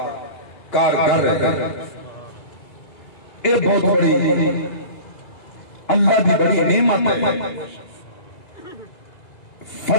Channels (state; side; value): late; right; 2.8 ms